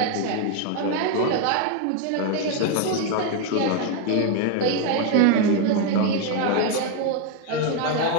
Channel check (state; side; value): different; both; correlation 0.01